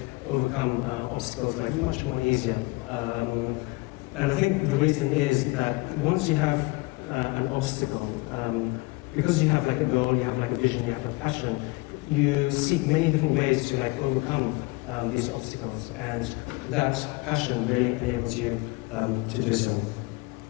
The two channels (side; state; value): right; quieter; 24.2 dB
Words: overcome obstacles like much more easier. And I think the reason is that once you have an obstacle, because you have like a goal, you have like a vision, you have a passion, you seek many different ways to like overcome these obstacles, and that passion really enables you to do so.